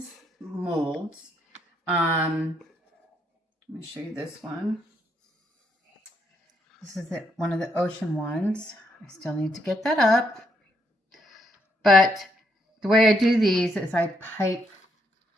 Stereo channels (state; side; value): normal; both; correlation 0.75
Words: molds. Let me show you this one. This is one of the ocean ones. I still need to get that up. But the way I do these is I pipe